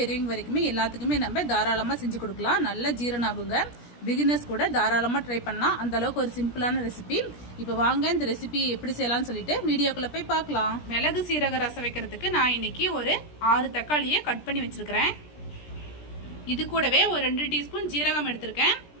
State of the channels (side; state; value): right; late; 17 ms